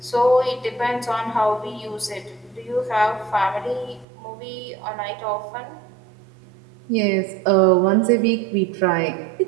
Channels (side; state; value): left; drops out; at 4.0 s